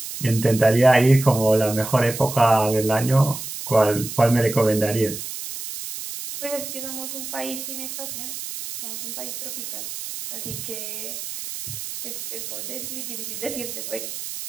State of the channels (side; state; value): right; noise; hiss, 8 dB below the sound